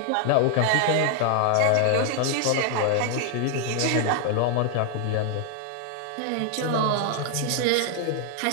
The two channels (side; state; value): both; different; correlation 0.00